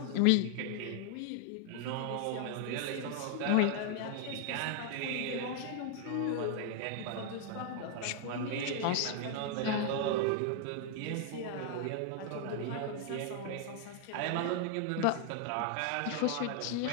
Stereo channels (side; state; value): both; different; correlation 0.00